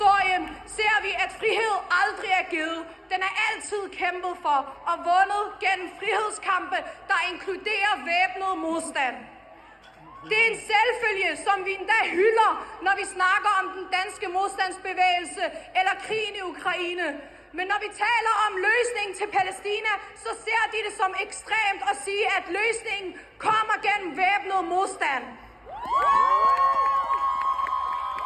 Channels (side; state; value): both; identical; correlation 1.00